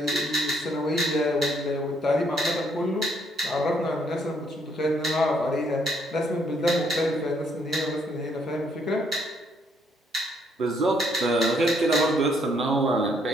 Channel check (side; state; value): both; normal; correlation 0.70